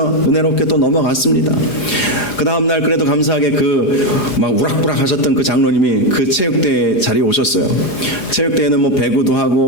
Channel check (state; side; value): late; right; 4.9 ms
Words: 은혜롭게 또 넘어갔습니다. 그 다음날 그래도 감사하게 막 우락부락 하셨던 그 장로님이 그 체육대회 자리에 오셨어요. 체육대회는 뭐 배구도